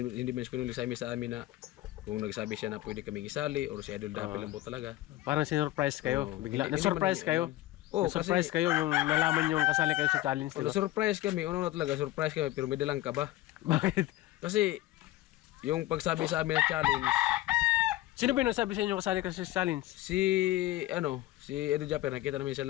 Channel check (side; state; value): right; quieter; 16.1 dB